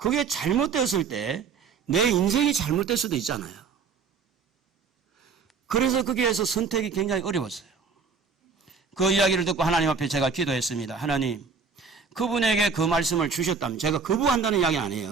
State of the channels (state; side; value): quieter; left; 5.3 dB